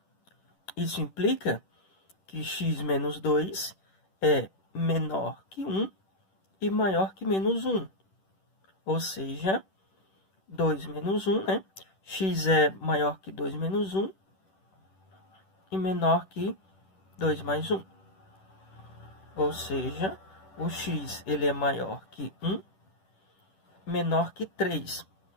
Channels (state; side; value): late; right; 10 ms